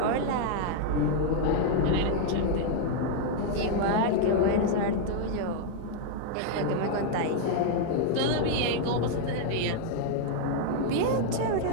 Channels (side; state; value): both; different; correlation 0.00